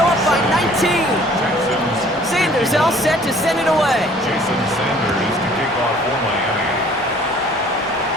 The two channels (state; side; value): normal; both; correlation 0.54